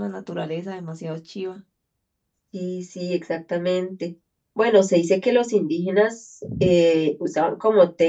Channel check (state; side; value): identical; both; correlation 1.00